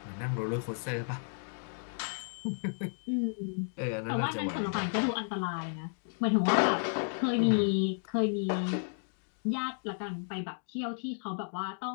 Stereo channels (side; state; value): right; silent; digital silence